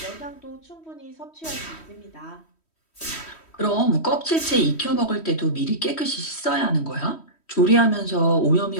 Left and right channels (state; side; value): late; right; 3.1 ms